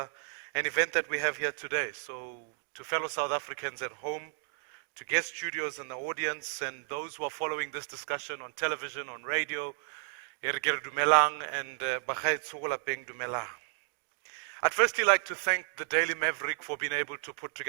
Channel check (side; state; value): left; silent; digital silence